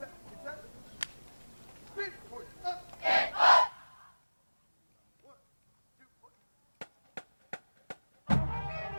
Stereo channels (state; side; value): inverted; both; correlation -1.00